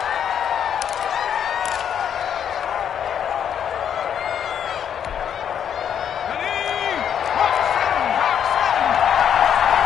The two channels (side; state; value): right; quieter; 8.7 dB